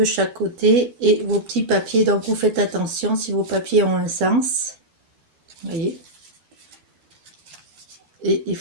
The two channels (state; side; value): late; left; 13 ms